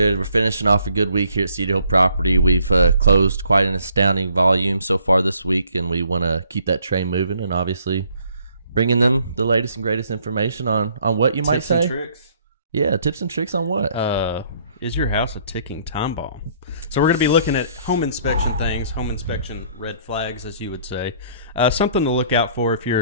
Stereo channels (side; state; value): both; inverted; correlation -0.63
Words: We're finishing off a good week here at Cedar Hill Property. We've closed quite an astounding volume so far this week, and we want to keep that train moving and obviously bringing them the latest and greatest information on what you might say. Tips and tricks. Yeah, tips and tricks on what? Is your house a ticking time bomb? So we're going to be looking at home inspection things, home inspection red flags, as you would say. Something to look out for if